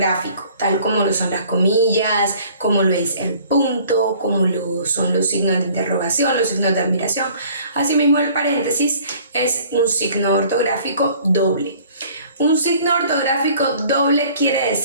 tal como lo son las comillas, como lo es el punto, como lo son los signos de interrogación, los signos de admiración. Asimismo, el paréntesis es un signo ortográfico doble. Un signo ortográfico doble quiere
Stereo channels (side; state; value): both; inverted; correlation -0.53